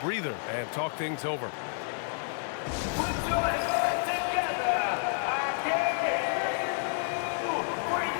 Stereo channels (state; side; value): silent; right; 58 dB below the other